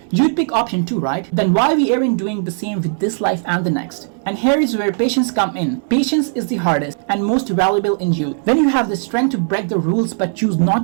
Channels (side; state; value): left; silent; digital silence